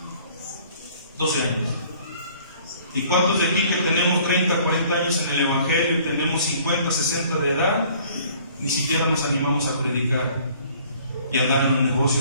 12 años. ¿Y cuántos de aquí que tenemos 30, 40 años en el Evangelio y tenemos 50, 60 de edad, ni siquiera nos animamos a predicar y a dar en los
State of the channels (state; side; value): inverted; both; correlation -0.55